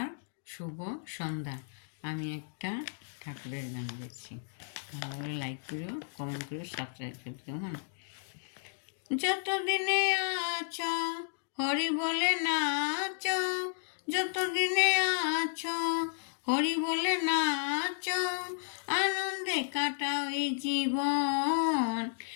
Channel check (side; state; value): right; silent; digital silence